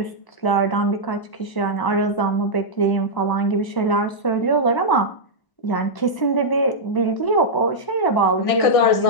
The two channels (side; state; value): right; late; 1.0 ms